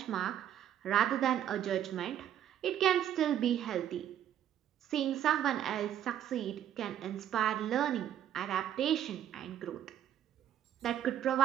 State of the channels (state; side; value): quieter; left; 10.6 dB